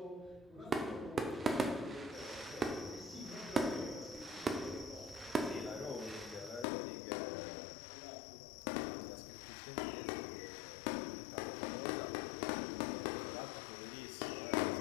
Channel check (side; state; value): right; drops out; at 6.7 s